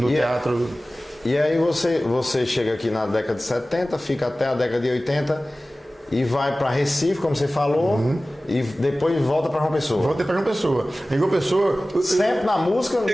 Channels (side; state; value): both; normal; correlation 0.97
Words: teatro. E aí você chega aqui na década de 70, fica até a década de 80 e vai para Recife, como você falou, e depois volta para João Pessoa. Voltei para João Pessoa. Em João Pessoa, sempre na música.